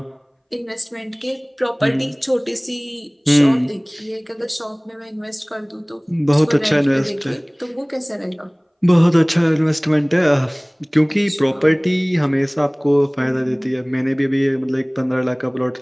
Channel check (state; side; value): identical; both; correlation 1.00